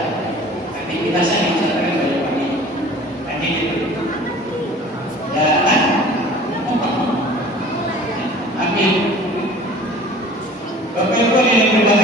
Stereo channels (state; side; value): normal; both; correlation 0.45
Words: Aktivitas saya misalkan banyak pagi. Tadi gitu. Dan amin. Bapak Ibu yang